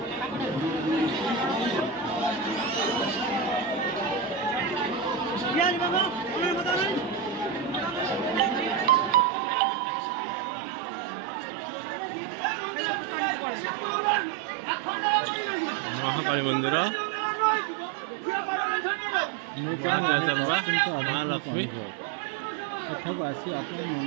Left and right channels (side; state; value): left; drops out; at 9.2 s